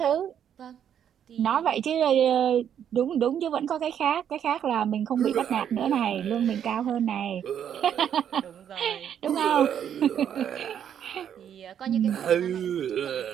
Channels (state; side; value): quieter; left; 9.1 dB